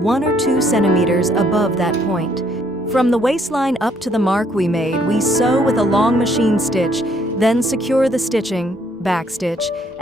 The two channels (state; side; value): normal; both; correlation 0.67